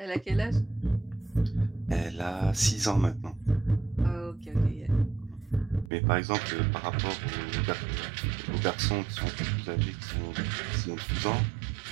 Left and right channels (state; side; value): drops out; left; at 5.9 s